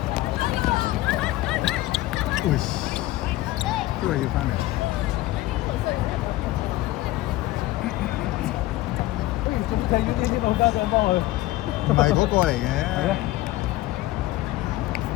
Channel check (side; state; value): right; quieter; 17.3 dB